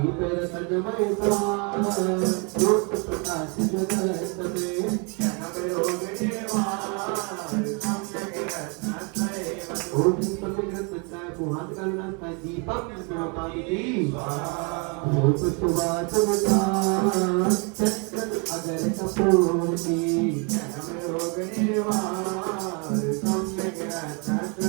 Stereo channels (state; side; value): quieter; left; 33.9 dB